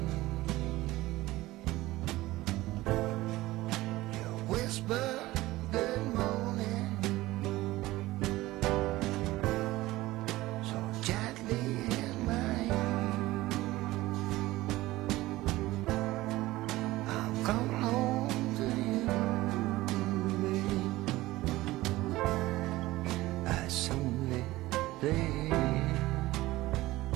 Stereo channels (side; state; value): left; quieter; 18.0 dB